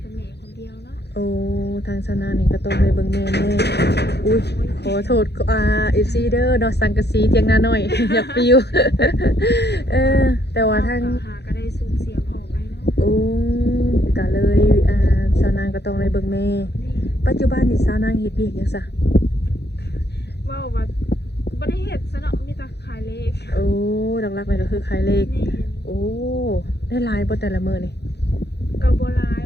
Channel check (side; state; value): right; late; 0.48 ms